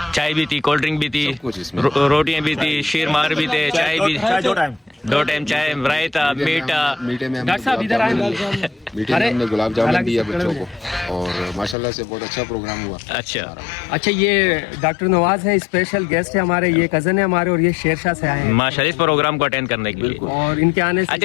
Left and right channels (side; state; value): right; drops out; at 11.8 s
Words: चाय भी थी, कोल्ड ड्रिंक भी थी, सब कुछ इसमें। रोटियां भी थी, शीर मार भी थे, चाय भी 2 टाइम चाय, रायता, मीठा। मीठे में डॉक्टर साहब इधर आए। मीठे में हमने गुलाब जामुन दिया बच्चों को और माशाल्लाह से बहुत अच्छा प्रोग्राम हुआ। अच्छा अच्छा ये डॉक्टर नवाज है, स्पेशल गेस्ट है हमारे, ये कजन है हमारे और ये शेरशाह से आए हैं माशाल्लाह इस प्रोग्राम को अटेंड करने के लिए। और इनके आने से